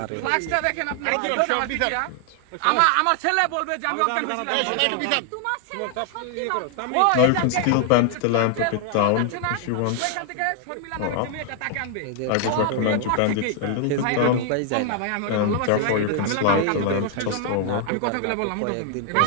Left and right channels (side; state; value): both; different; correlation 0.00